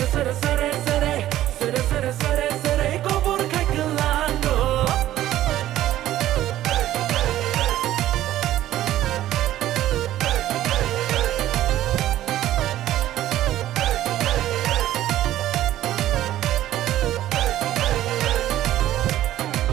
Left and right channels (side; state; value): left; quieter; 13.6 dB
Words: sere sere sere sere sere sere kubur kai kelango